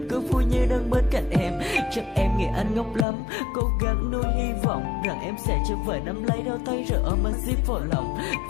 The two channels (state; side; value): drops out; right; at 3.1 s